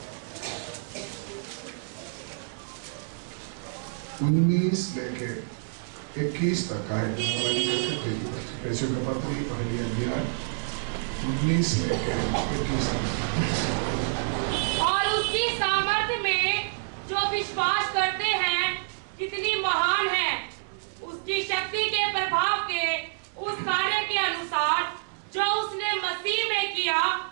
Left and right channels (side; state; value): left; silent; 59 dB below the other